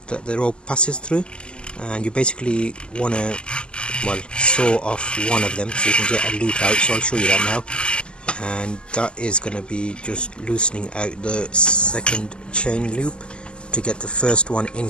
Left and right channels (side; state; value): right; late; 0.049 ms